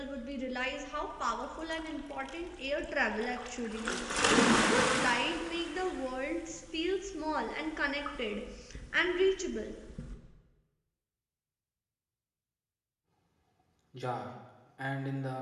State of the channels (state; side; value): identical; both; correlation 1.00